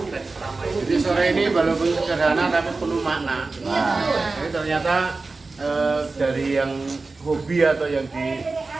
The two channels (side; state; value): left; quieter; 3.7 dB